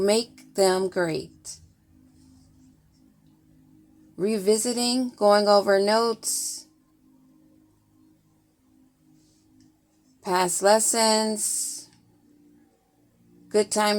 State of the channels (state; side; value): identical; both; correlation 1.00